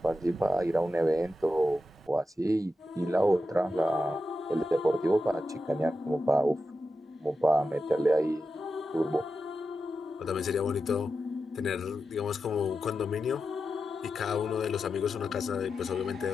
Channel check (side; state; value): both; normal; correlation 0.90